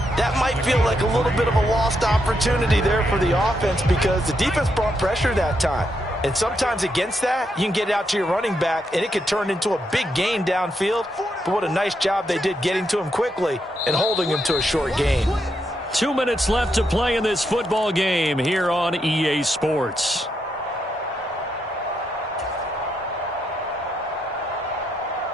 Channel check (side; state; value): both; normal; correlation 0.80